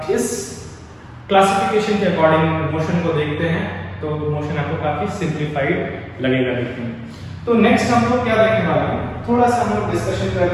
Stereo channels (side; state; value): both; identical; correlation 1.00